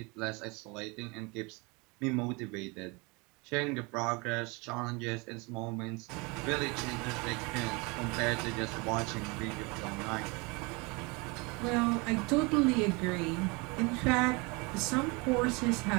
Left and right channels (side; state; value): left; quieter; 28.1 dB